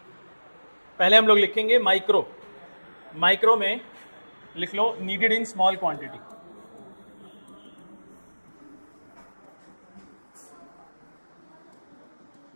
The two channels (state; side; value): inverted; both; correlation -1.00